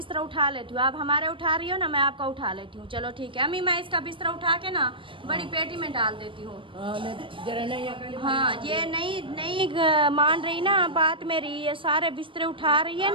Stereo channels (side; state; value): left; late; 0.25 ms